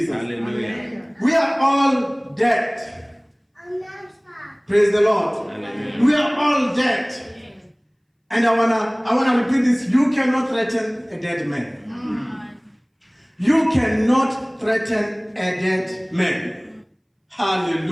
Hallelujah. We are all dead. Praise the Lord. Hallelujah. We are all dead. And I wanna repeat this. You cannot threaten a dead man. You cannot threaten a dead man.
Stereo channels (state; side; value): identical; both; correlation 1.00